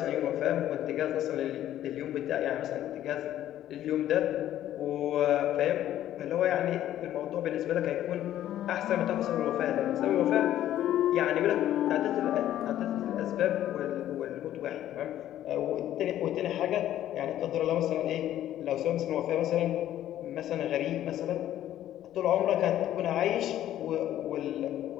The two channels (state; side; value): quieter; right; 12.3 dB